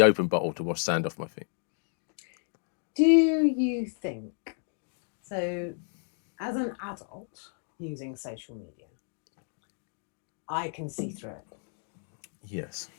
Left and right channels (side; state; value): right; silent; 57 dB below the other